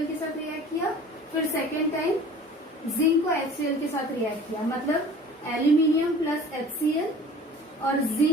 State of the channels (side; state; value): both; normal; correlation 0.45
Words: के साथ रिएक्ट किया, फिर सेकेंड टाइम जिंक को HCl के साथ रिएक्ट किया. मतलब एल्यूमिनियम प्लस HCl और